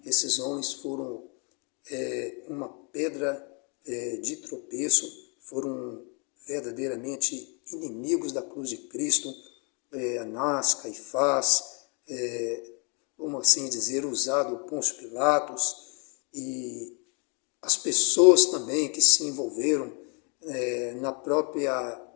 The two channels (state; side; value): quieter; right; 35.7 dB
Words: esses homens foram uma pedra de tropeço, foram verdadeiramente inimigos da cruz de Cristo. Anás, Caifás, vamos assim dizer, usado Pôncio Pilatos, e as pessoas também que se envolveram na própria